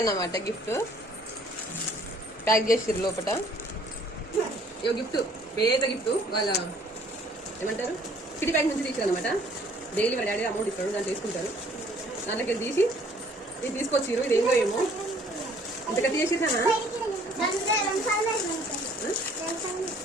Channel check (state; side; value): normal; both; correlation 0.58